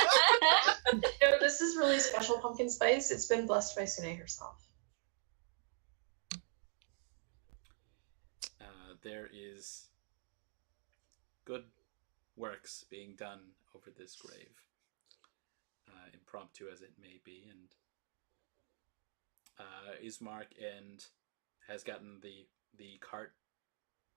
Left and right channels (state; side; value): silent; left; 51 dB below the other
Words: No, this is really special pumpkin spice. It's been blessed by Sune herself. There is good works being done over this grave, impromptu as it may be, and Ismark has gotten the cart